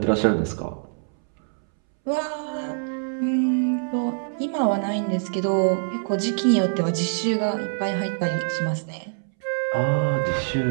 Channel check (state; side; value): silent; left; 62 dB below the other